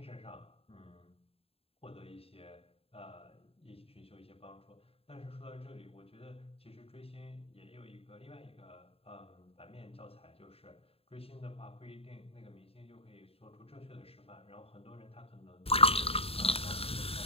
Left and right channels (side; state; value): right; late; 0.28 ms